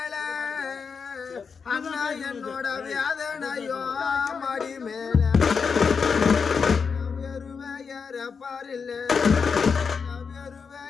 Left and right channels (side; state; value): right; quieter; 5.7 dB